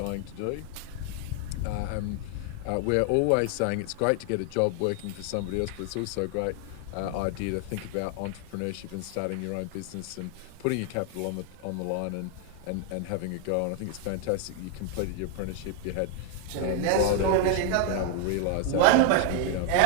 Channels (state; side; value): different; both; correlation 0.00